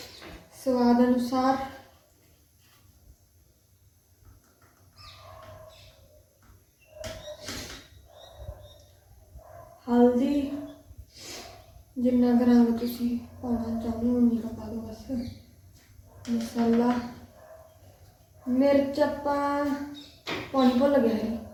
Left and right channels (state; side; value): identical; both; correlation 1.00